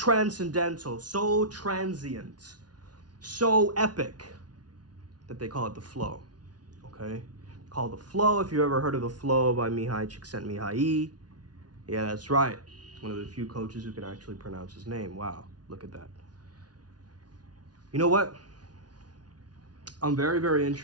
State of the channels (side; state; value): left; late; 0.69 ms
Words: so transient, so epic that they call it the flow. Okay? Call the flow. If you ever heard of the flow by Mihai Csikszentmihalyi. Yeah, that's right. One of the few coaches who can actually pronounce his name. Wow, look at that. You know what? I'm very, very